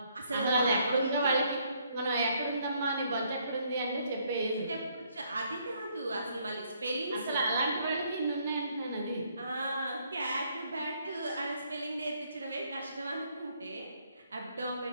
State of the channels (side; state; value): both; inverted; correlation -0.69